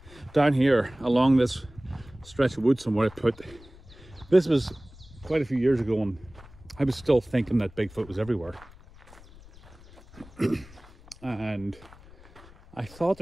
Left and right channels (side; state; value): left; noise; rumble, 22 dB below the sound